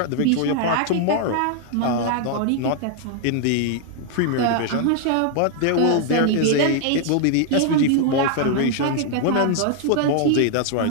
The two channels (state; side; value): different; both; correlation 0.00